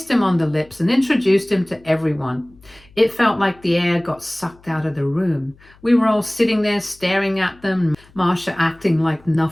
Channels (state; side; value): noise; left; hum, 27 dB below the sound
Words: him on the lips, and introduced him to everyone. It felt like the air got sucked out of the room. We were all sitting there staring at them, Marcia acting like